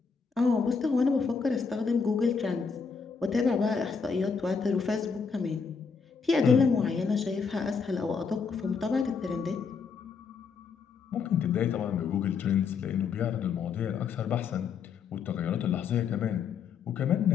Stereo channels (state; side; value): quieter; right; 5.7 dB